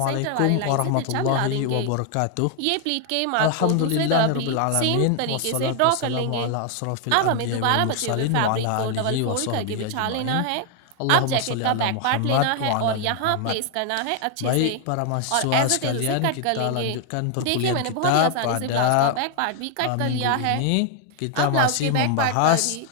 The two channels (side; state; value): both; different; correlation 0.00